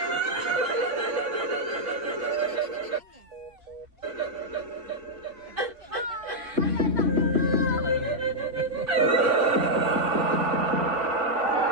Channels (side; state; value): left; late; 3.0 ms